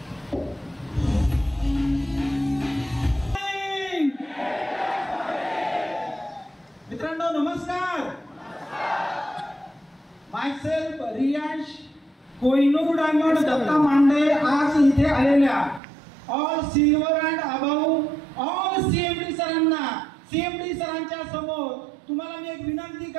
मित्रांनो नमस्कार. मायसेल्फ रियांश कोहिनूर डायमंड दत्ता मांडे आज इथे आलेल्या all silver and about all CMD सरांना, सीएमडी सरांच्या समोर तुम्हाला मी एक विनंती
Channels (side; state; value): left; drops out; at 15.8 s